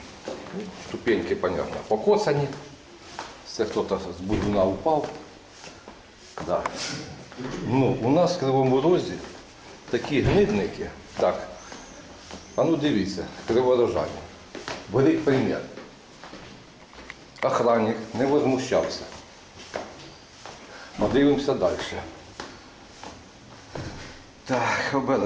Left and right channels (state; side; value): identical; both; correlation 1.00